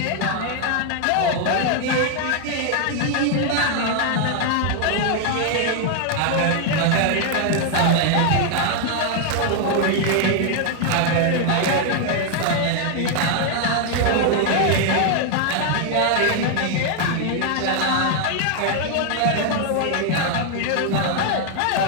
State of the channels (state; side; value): different; both; correlation 0.00